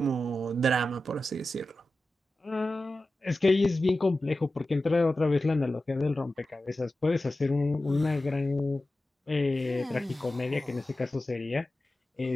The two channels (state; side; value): normal; both; correlation 0.94